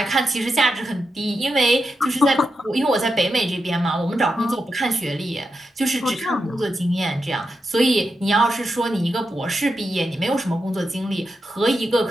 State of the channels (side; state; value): both; normal; correlation 0.87